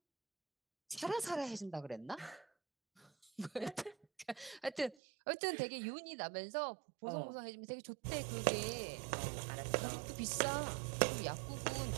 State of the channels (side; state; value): left; drops out; at 5.0 s